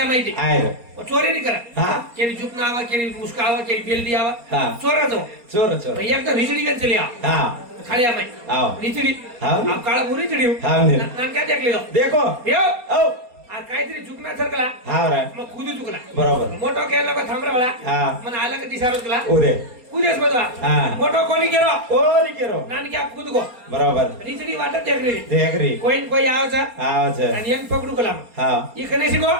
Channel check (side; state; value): left; late; 4.3 ms